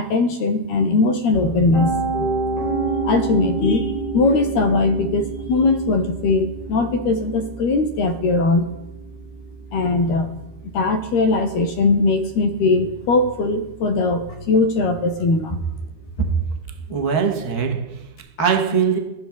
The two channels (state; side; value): late; right; 13 ms